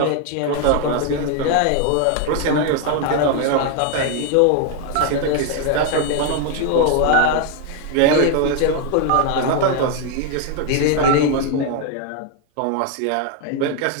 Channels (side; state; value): both; different; correlation 0.01